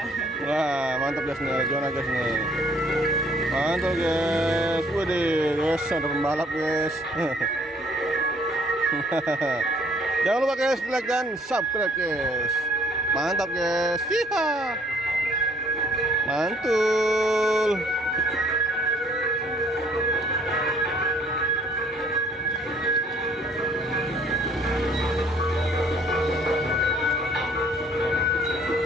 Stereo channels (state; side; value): normal; both; correlation 0.60